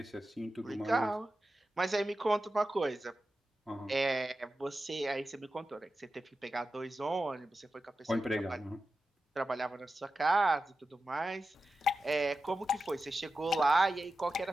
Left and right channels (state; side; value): normal; both; correlation 0.92